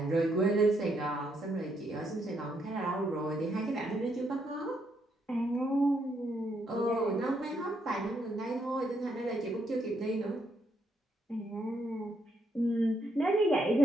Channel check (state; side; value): normal; both; correlation 0.76